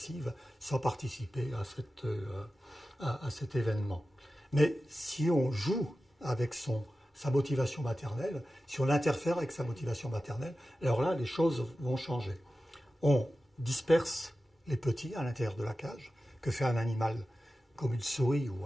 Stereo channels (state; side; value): normal; both; correlation 0.94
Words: sans participer à cet événement. Mais si on joue avec sa motivation maternelle, si on interfère avec sa motivation maternelle, alors là, les choses vont changer. On disperse les petits à l'intérieur de la cage. Que fait un animal comme une souris